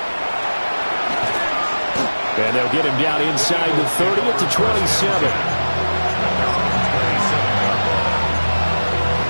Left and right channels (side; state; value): both; inverted; correlation -1.00